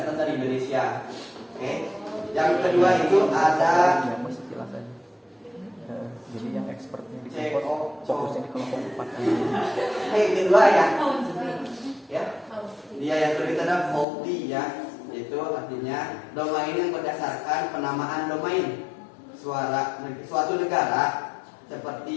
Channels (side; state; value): right; drops out; at 14.1 s